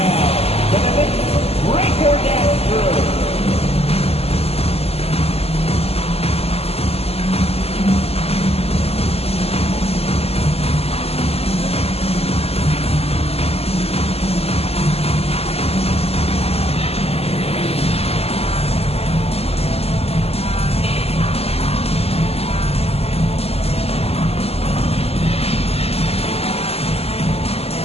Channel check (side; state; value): right; late; 0.29 ms